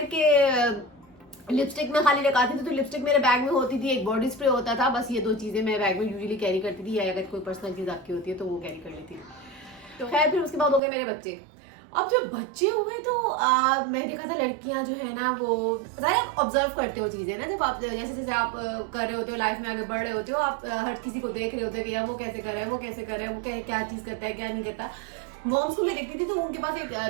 कि लिपस्टिक में खाली लगाती थी तो लिपस्टिक मेरे बैग में होती थी, एक बॉडी स्प्रे होता था, बस ये दो चीज़ें मैं बैग में यूजुअली कैरी करती थी, या अगर कोई पर्सनल चीज़ आपकी होती है तो वो कैरी कर लेती थी। तो खैर फिर उसके बाद हो गए मेरे बच्चे। अब जब बच्चे हुए तो मैं देखा था लड़कियां जो है ना वो आप ऑब्जर्व करते हो चीज़ें ना, जब आप जैसे जैसे आप कर रहे होते हो लाइफ में आगे बढ़ रहे होते हो, आप हर किसी को देख रहे होते हो कि यार वो कैसे कर रहा है, वो कैसे कर रहा है, वो क्या चीज़ करता है क्या नहीं करता। मॉम्स को मैं देखती थी तो उनके पास एक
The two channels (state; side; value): drops out; left; at 10.8 s